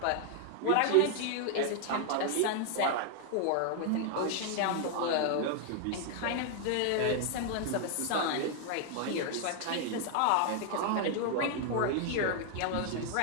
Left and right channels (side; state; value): both; different; correlation 0.00